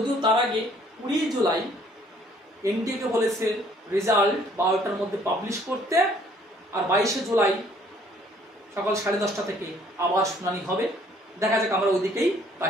তার আগে 20 জুলাই এনটিএকে বলেছে রেজাল্ট 12টার মধ্যে পাবলিশ করতে, আর 22শে জুলাই সকাল 10:30 থেকে আবার শুনানি হবে। দেখা যাক, আমরা ওইদিকেই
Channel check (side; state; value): both; normal; correlation 0.61